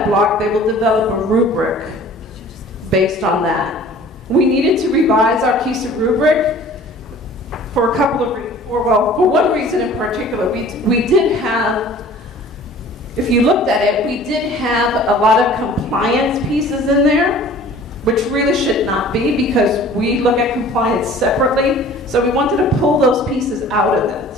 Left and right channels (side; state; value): both; normal; correlation 0.47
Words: block, they will develop a rubric based on that. We needed to revise our KSDE rubric for a couple of reasons. Well, for one reason in particular. We did have, if you looked at it, we did have a lot of compliance pieces in there, which really should not be, because we look at compliance separately. So we wanted to pull those pieces out of